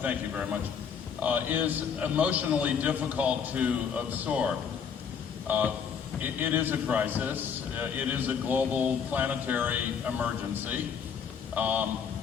thank you very much, is emotionally difficult to absorb. It is a crisis. It is a global planetary emergency.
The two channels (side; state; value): right; quieter; 7.0 dB